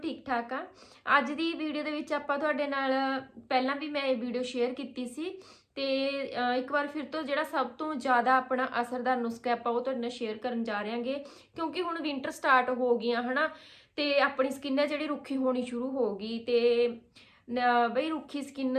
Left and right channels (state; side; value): identical; both; correlation 1.00